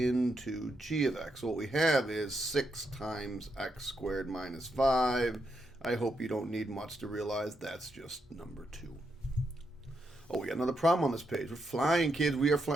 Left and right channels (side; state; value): both; normal; correlation 0.81